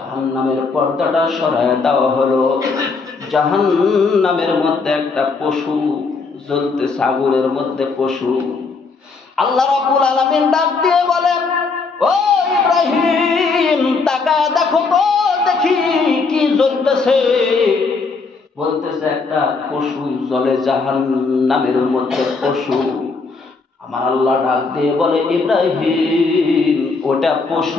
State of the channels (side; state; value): right; quieter; 4.4 dB